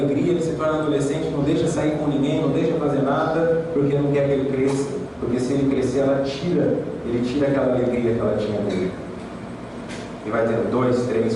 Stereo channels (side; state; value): both; identical; correlation 1.00